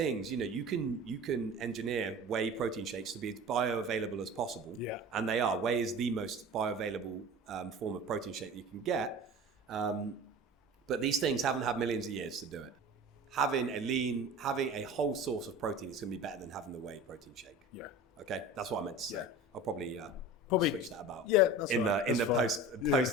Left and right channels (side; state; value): both; normal; correlation 0.37